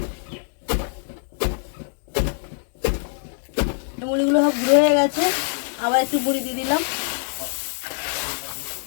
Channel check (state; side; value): silent; right; digital silence